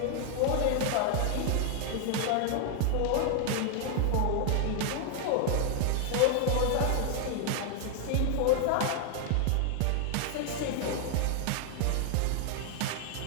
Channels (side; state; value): both; different; correlation 0.00